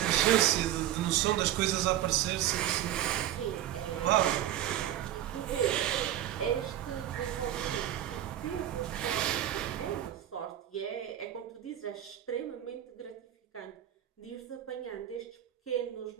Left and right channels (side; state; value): left; quieter; 12.2 dB